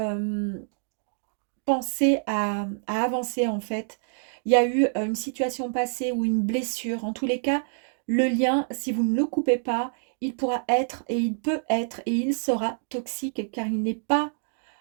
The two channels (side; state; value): left; silent; digital silence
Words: penser à avancer en fait. Il y a eu une situation passée ou une blessure. En tous les cas, le lien, si vous ne le coupez pas, il pourra être et il peut être et il sera toxique car il n'est pas